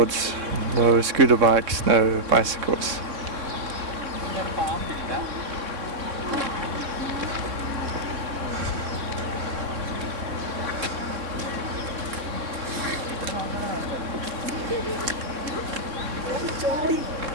no scooter bikes, no bicycles.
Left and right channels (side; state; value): left; late; 3.7 ms